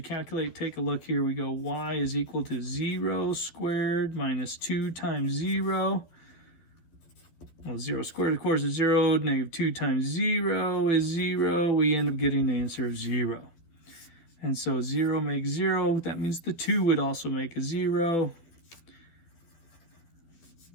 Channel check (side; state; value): right; late; 12 ms